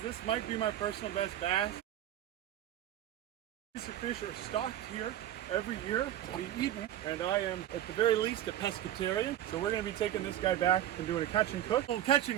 This might be my personal best bass. These fish are stocked here every year to be eaten, and I am at the very least a pescatarian. So we're going to be taking this guy back and doing a catch and cook. A little catch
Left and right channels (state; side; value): quieter; left; 12.1 dB